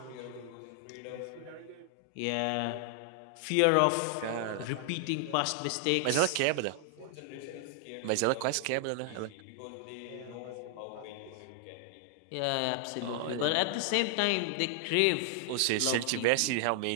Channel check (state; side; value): different; both; correlation 0.00